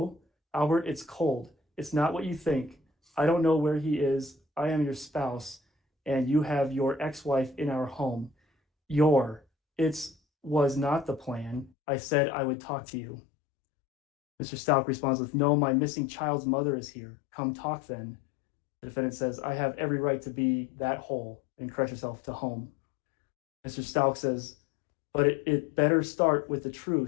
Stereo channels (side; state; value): right; drops out; at 11.7 s